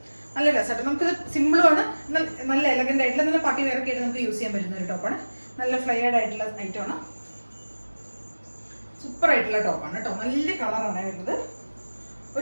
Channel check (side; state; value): both; inverted; correlation -1.00